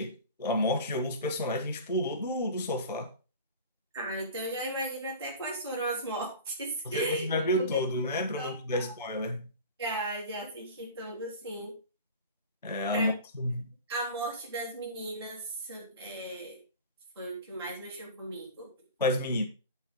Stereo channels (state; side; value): inverted; both; correlation -0.35